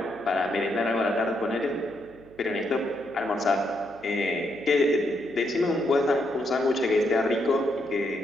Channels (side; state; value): right; noise; hum, 24 dB below the sound